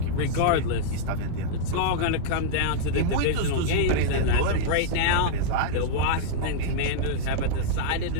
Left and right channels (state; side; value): different; both; correlation -0.02